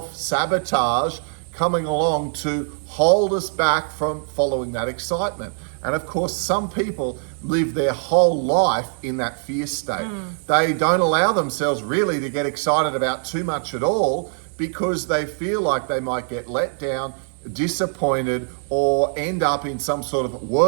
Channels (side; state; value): left; silent; digital silence